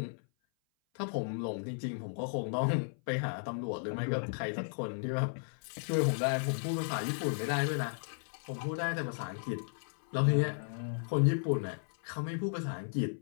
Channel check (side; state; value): right; silent; 55 dB below the other